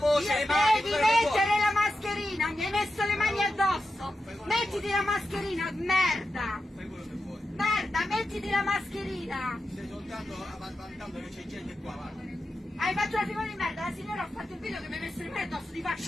le mani, devi mettere la mascherina, mi hai messo le mani addosso! Mettiti la mascherina, merda! Fai quello che vuoi. Merda, mettiti la mascherina! Stai soltanto vantando che c'è gente qua, guarda. Hai fatto una figura di merda, la signora ha fatto il video che mi hai messo le mani addosso, ti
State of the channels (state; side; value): normal; both; correlation 0.90